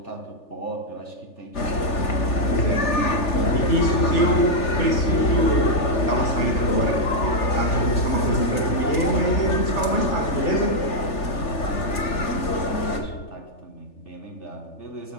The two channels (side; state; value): right; late; 3.4 ms